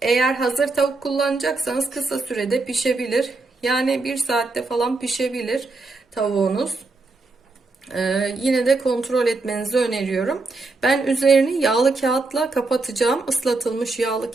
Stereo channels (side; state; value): left; quieter; 3.5 dB